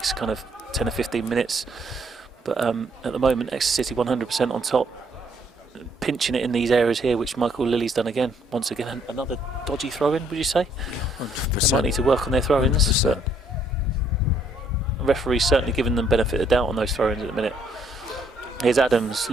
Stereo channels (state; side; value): normal; both; correlation 0.68